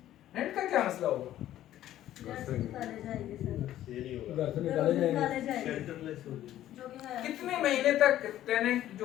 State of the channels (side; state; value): right; quieter; 12.9 dB